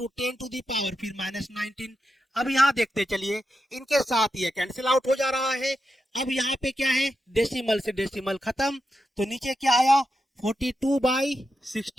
10 to the power फिर -19। अब यहाँ देखते चलिए इनके साथ ये कैंसिल आउट हो जा रहा है। अब यहाँ पे क्या है, डेसिमल से डेसिमल खत्म, तो नीचे क्या आया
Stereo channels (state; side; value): normal; both; correlation 0.87